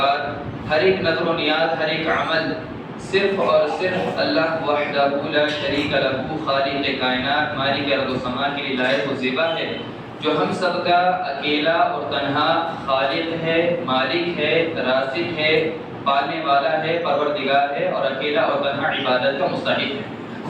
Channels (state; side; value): identical; both; correlation 1.00